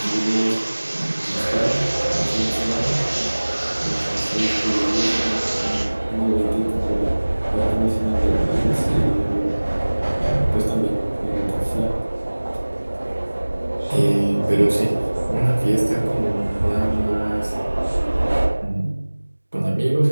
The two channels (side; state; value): both; inverted; correlation -1.00